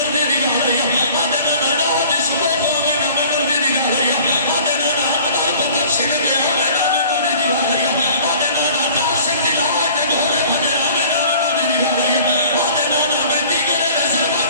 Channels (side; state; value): both; inverted; correlation -0.48